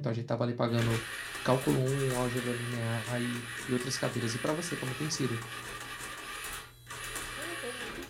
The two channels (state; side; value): identical; both; correlation 1.00